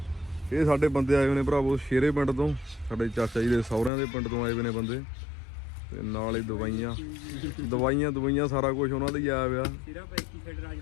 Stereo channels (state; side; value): drops out; right; at 3.9 s